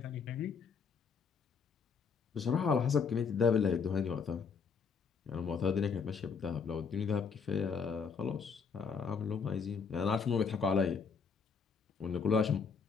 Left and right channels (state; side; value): quieter; right; 5.8 dB